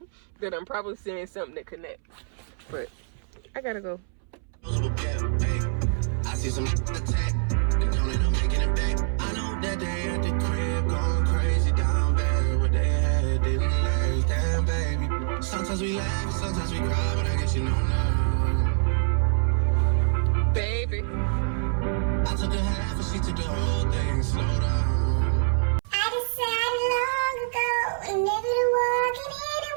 That I'm probably saying something that connects. But I gotta go. I see some attack, and don't end up making it back. I know that they at the crib going crazy down bad. What they had didn't last, damn baby. Sometimes we laugh, sometimes we cry, but I guess you know now. Baby, I took a half and she took the whole thing, slow down. I decided long ago never to walk in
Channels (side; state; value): left; silent; 61 dB below the other